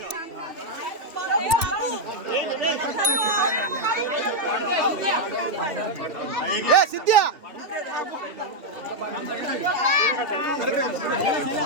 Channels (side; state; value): left; late; 3.0 ms